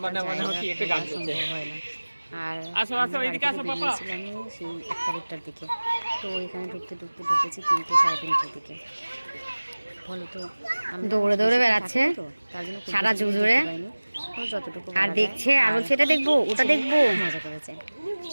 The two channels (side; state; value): both; inverted; correlation -1.00